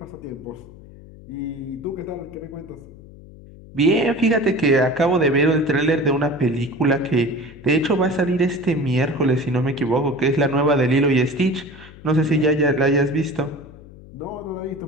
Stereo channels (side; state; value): left; noise; hum, 19 dB below the sound